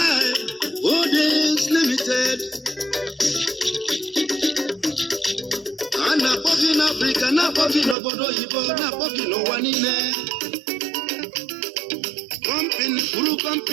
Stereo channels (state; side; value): drops out; left; at 8.0 s